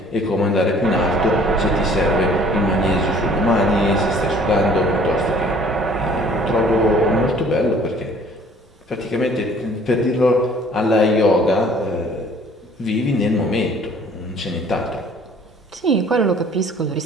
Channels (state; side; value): normal; both; correlation 0.54